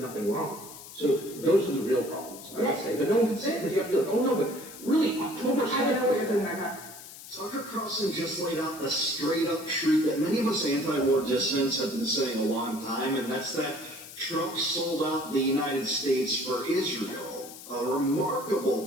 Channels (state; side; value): noise; left; hiss, 15 dB below the sound